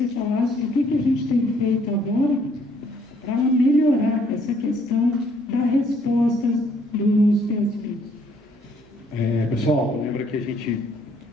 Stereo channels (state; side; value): normal; both; correlation 0.65